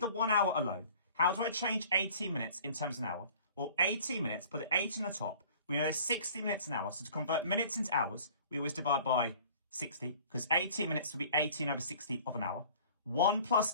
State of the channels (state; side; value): inverted; both; correlation -0.48